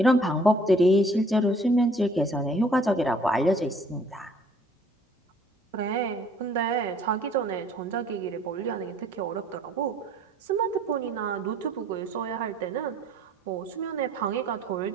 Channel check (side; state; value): both; normal; correlation 0.57